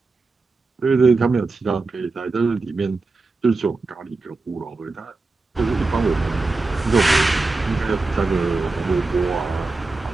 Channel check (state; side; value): quieter; left; 3.6 dB